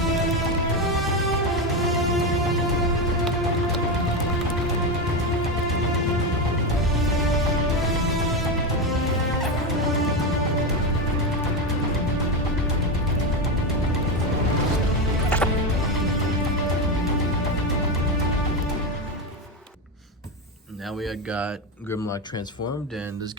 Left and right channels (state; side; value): normal; both; correlation 0.13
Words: Now we got Grimlock transformed, and this